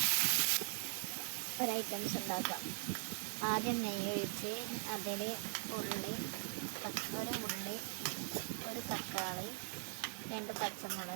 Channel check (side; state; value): left; silent; digital silence